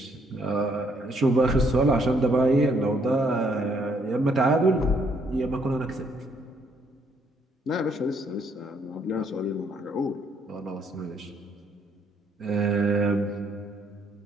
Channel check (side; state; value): both; normal; correlation 0.70